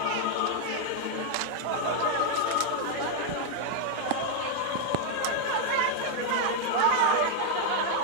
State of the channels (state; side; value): different; both; correlation 0.01